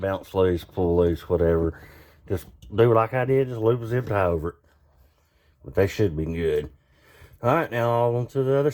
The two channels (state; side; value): identical; both; correlation 1.00